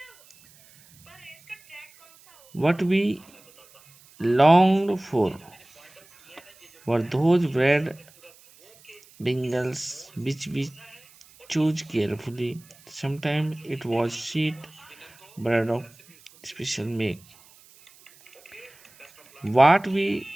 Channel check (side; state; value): right; noise; hiss, 26 dB below the sound